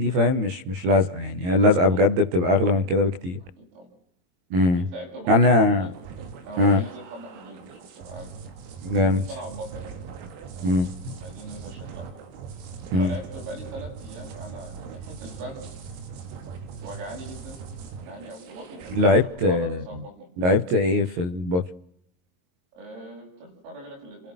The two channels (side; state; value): left; late; 22 ms